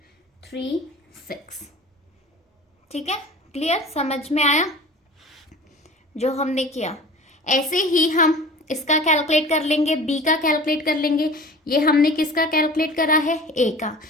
ठीक है। क्लियर, समझ में आया जो हमने किया। ऐसे ही हम इसका कैलकुलेट कर लेंगे, बी का कैलकुलेट कर लेंगे। ये हमने किसका कैलकुलेट करा है ए का।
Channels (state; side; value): normal; both; correlation 0.40